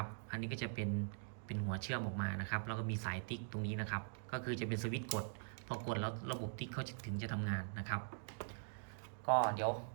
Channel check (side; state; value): left; silent; digital silence